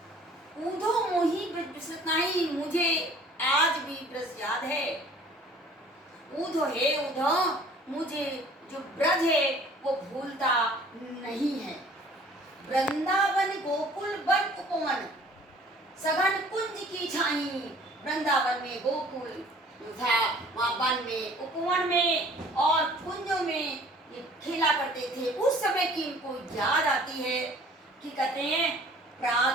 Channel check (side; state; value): both; normal; correlation 0.52